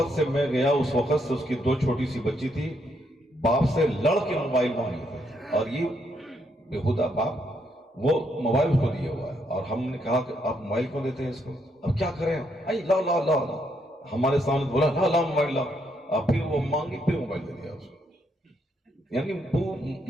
سے میں گیا اس وقت سے اس کی 2 چھوٹی سی بچی تھی، باپ سے لڑ کے موبائل مانگے تھے، اور یہ بےہودہ باپ وہ موبائل کو دیا ہوا ہے، اور ہم نے کہا کہ آپ موبائل کیوں دیتے ہیں اس کو، اب کیا کریں، لا ہمارے سامنے بولا لا موبائل لا، اور پھر وہ مانگی، پھر موبائل دے دیا اس کو۔ یعنی وہ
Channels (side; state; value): both; normal; correlation 0.75